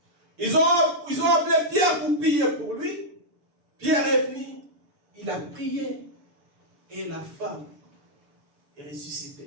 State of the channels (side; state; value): left; late; 6.9 ms